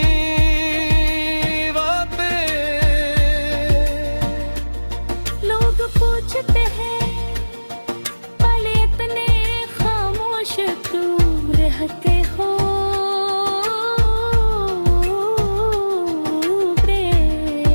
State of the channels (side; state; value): both; inverted; correlation -1.00